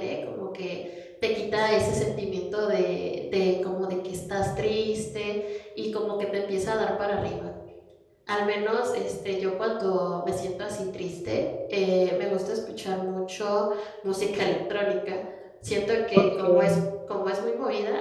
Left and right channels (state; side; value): identical; both; correlation 1.00